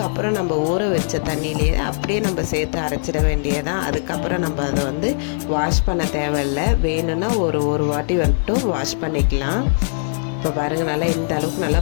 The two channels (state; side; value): silent; right; 66 dB below the other